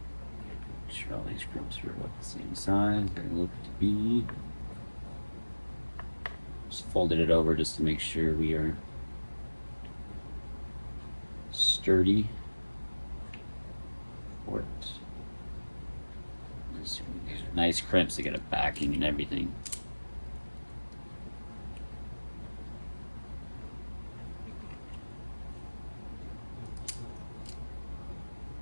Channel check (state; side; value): inverted; both; correlation -1.00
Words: Make sure all these crimps are about the same size they look to be. Just folded it over just to make sure we are sturdy for it. These are nice crimps to get a backing and everything.